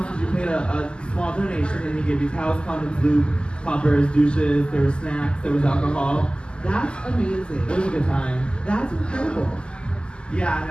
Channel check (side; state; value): right; late; 0.050 ms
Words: is you paid a small donation and he gave you towels, condoms, lube, poppers, douches, there were snacks, there was alcohol. That's amazing. It was a good time. That's incredible. Yeah,